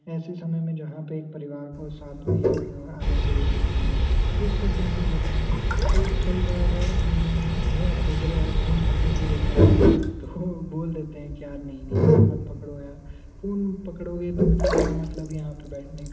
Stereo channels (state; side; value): identical; both; correlation 1.00